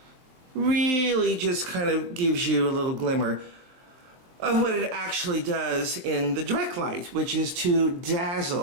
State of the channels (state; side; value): late; left; 23 ms